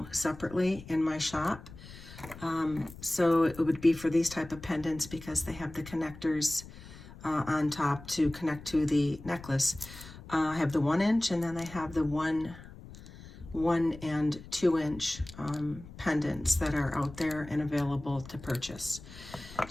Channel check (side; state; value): left; noise; rumble, 16 dB below the sound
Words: separately in my shop. So it would be for these type of pendants because they have the connectors on top to connect to the necklace. I have the 1 inch and then I have the 1 and 2 inch pendants that are out there and available to purchase.